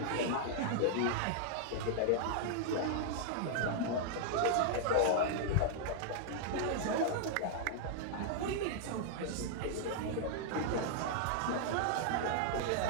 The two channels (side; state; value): both; different; correlation -0.01